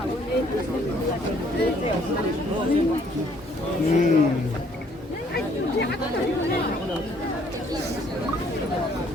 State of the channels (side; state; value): both; normal; correlation 0.63